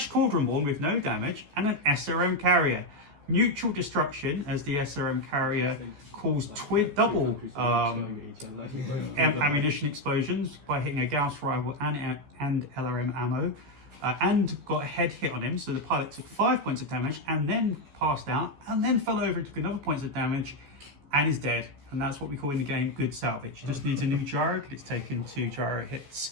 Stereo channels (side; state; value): left; late; 14 ms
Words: Cauldron-born with no damage and an SRM carrier. Mutual destruction as the SRM carrier caused double ammunition explosions by hitting a Gauss rival and LRM ammo, and got a head hit on him. So the pilot took 5 points of damage and then passed out and then fell over and took another points of damage and is dead. And that's what we call in the game good salvage. He just needs a new gyro because it's taken 2 gyro hits.